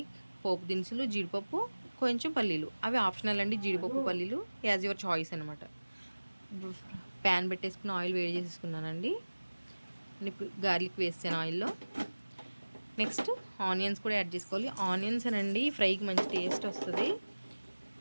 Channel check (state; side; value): inverted; both; correlation -1.00